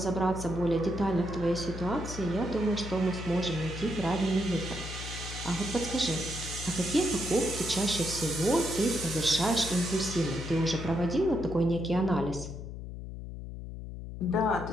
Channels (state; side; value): noise; left; hum, 9 dB below the sound